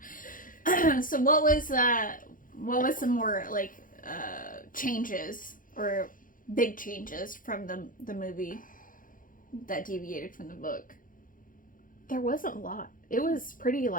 So what was some more, like, changes or big changes from the movie that deviated from the book? There wasn't a lot. It was pretty,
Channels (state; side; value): late; right; 0.40 ms